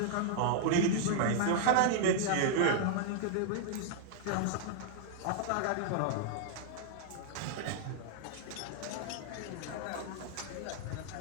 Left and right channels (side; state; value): both; different; correlation -0.01